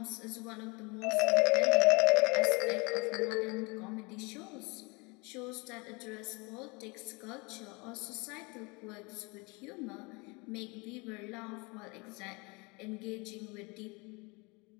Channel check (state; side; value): quieter; right; 27.9 dB